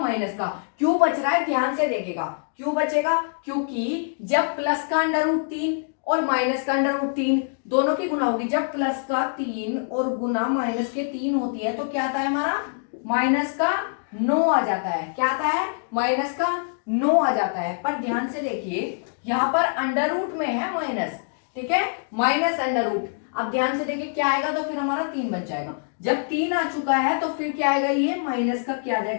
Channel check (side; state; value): right; silent; digital silence